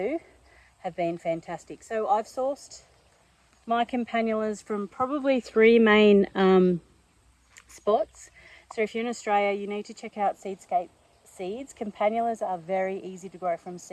have been fantastic. So I've sourced my campanulas from probably three main spots. So if you're in Australia, you need to check out Seedscape seeds. Campanulas are very easy to grow from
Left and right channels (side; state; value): both; identical; correlation 1.00